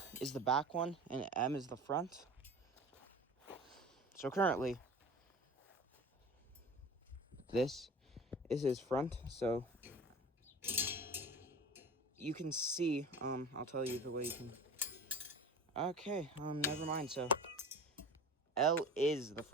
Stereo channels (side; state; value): both; normal; correlation 0.37